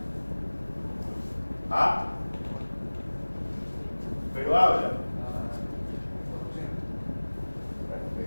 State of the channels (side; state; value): both; inverted; correlation -1.00